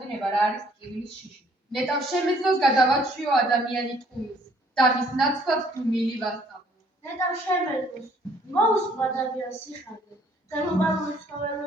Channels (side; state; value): both; normal; correlation 0.62